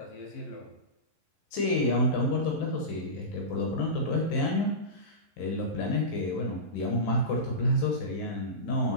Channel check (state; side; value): late; right; 11 ms